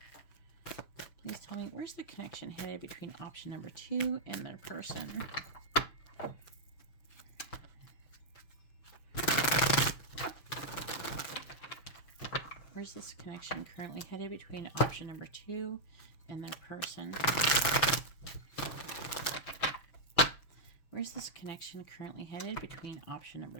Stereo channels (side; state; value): right; late; 6.0 ms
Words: Please tell me, where's the connection headed between option number 2 and their person? Where's this connection currently headed between option number 2 and their person? Where's this connection currently headed between option number